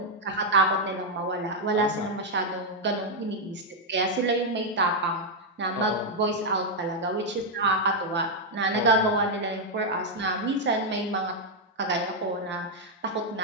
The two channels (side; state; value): both; normal; correlation -0.02